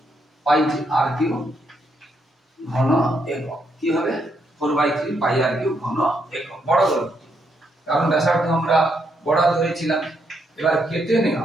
পাই r কিউব ঘন একক। কি হবে? 4/3 পাই r কিউব ঘন একক, বড় গোলক। কারণ ব্যাসার্ধ আমরা বড় ধরেছিলাম। এবার কেটে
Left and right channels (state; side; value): normal; both; correlation 0.77